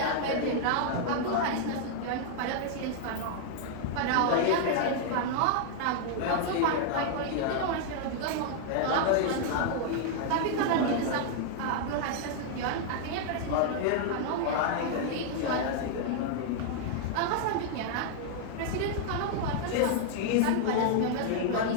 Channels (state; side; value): different; both; correlation -0.01